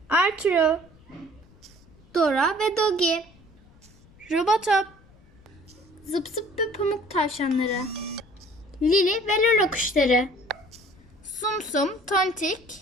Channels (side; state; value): left; noise; rumble, 27 dB below the sound